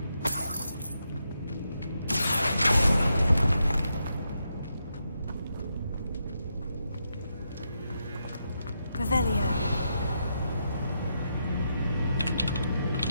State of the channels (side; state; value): both; inverted; correlation -0.83